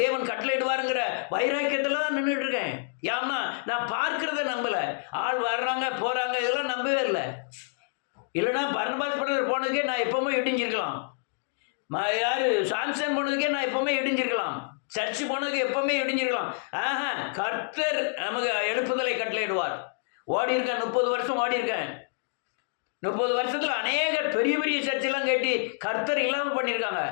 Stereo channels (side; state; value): right; silent; digital silence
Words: தேவன் கட்டளையிடுவாருங்கிற வைராக்கியத்தில் தான் நின்றுட்டு இருக்கேன். ஏன்னா நான் பார்க்கறத நம்பலை. ஆள் வர்றாங்க போகிறாங்க இதெல்லாம் நம்பவே இல்லை. இல்லைனா பர்னபாஸ் படத்தில் போனதுக்கே நான் எப்பவுமே இடிஞ்சிருக்கலாம். யார் சாம்சன் போனதுக்கே நான் எப்பவுமே இடிஞ்சிருக்கலாம். சர்ச்சு போனதுக்கு எப்பவுமே இடிஞ்சிருக்கலாம். கர்த்தர் நமக்கு எழுப்புதலை கட்டளையிடுவார். ஓடி இருக்கேன், 30 வருஷம் ஓடி இருக்கேன். 30 வருஷத்தில் அநேக பெரிய பெரிய சர்ச்செல்லாம் கேட்டு கர்த்தர் இல்லாமல் பண்ணியிருக்காங்க.